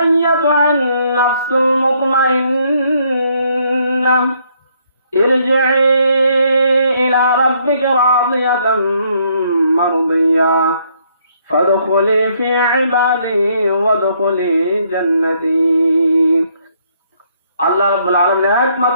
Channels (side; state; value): both; inverted; correlation -0.69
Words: নাফসুল মুতমাইন্না ইরজিই ইলা রাব্বিকা রাদিয়াতাম মারদিয়া ফাদখুলি ফি ইবাদি ওয়াদখুলি জান্নাতি। আল্লাহ রাব্বুল আলামিন